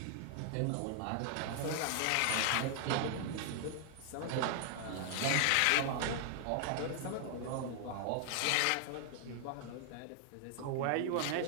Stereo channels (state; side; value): different; both; correlation 0.00